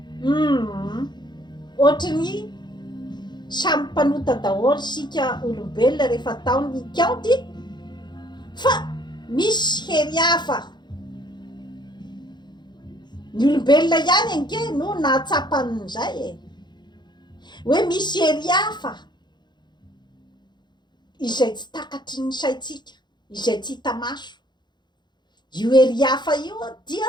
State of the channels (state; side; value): late; right; 0.21 ms